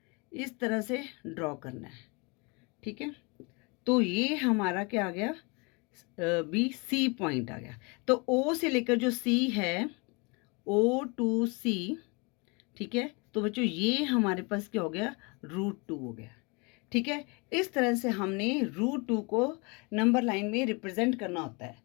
इस तरह से ड्रॉ करना है। ठीक है, तो ये हमारा क्या आ गया, बी सी पॉइंट आ गया। तो ओ से लेकर जो सी है, ओ टू सी, ठीक है, तो बच्चों ये हमारे पास क्या हो गया, √2 हो गया। ठीक है, इस तरह से हमने √2 को नंबर लाइन में रिप्रेजेंट करना होता है।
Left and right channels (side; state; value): right; quieter; 29.7 dB